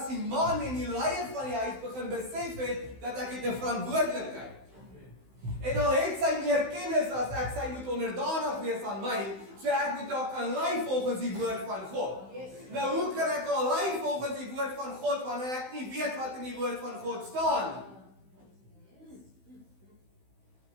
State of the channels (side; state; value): left; late; 16 ms